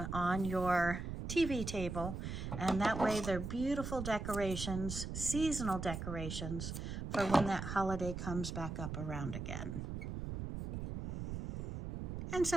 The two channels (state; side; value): noise; right; rumble, 5 dB below the sound